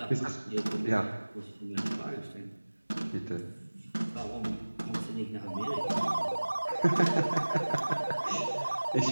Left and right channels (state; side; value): inverted; both; correlation -1.00